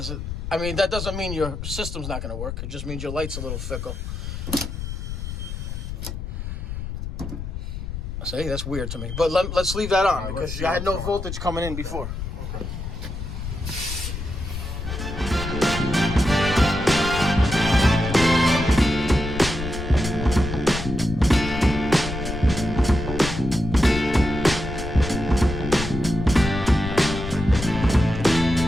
I mean, that doesn't mean your system's not going to work. It just means your light's a little fickle. See, that's weird to me. But let's leave that on because I had no voltage coming in before. Okay.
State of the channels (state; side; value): noise; left; rumble, 6 dB below the sound